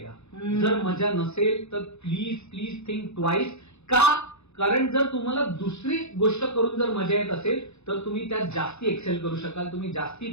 जर मजा नसेल तर प्लीज थिंक ट्वाइस. का? कारण जर तुम्हाला दुसरी गोष्ट करून जर मजा येत असेल तर तुम्ही त्यात जास्ती एक्सेल करू शकाल, तुम्ही जास्ती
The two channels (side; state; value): right; late; 0.81 ms